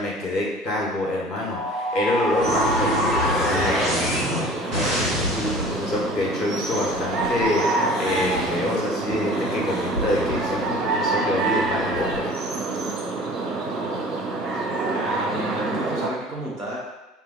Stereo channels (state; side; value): normal; both; correlation 0.45